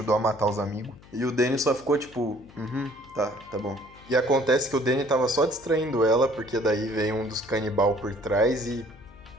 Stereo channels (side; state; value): left; noise; hum, 23 dB below the sound